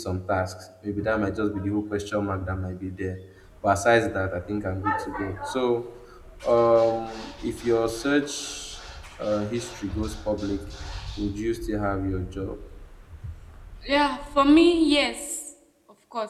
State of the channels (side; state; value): both; identical; correlation 1.00